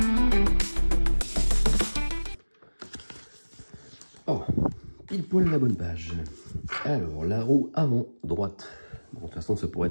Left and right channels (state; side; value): inverted; both; correlation -1.00